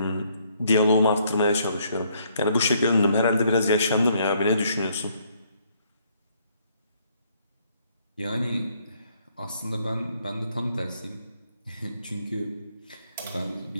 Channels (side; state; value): both; inverted; correlation -0.68